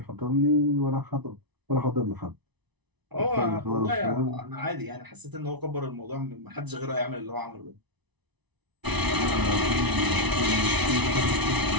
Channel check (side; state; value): left; late; 1.0 ms